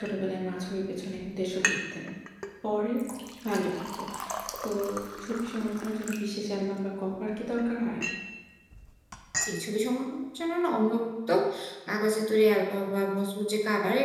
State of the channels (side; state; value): both; identical; correlation 1.00